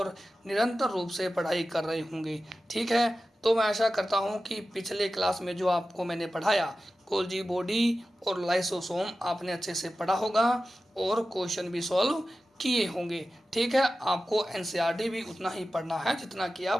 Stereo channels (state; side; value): normal; both; correlation 0.94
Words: निरंतर रूप से पढ़ाई कर रहे होंगे। ठीक है, तो मैं आशा करता हूँ कि पिछले क्लास में जो आपको मैंने पढ़ाया गोल्जी बॉडी और लाइसोसोम आपने अच्छे से पढ़ा होगा और क्वेश्चन भी सॉल्व किए होंगे। ठीक है, आपको एनसीईआरटी भी उतना ही पढ़ना है जितना कि